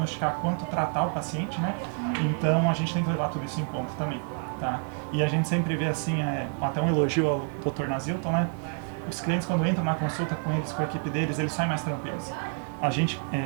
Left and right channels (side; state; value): left; quieter; 39.9 dB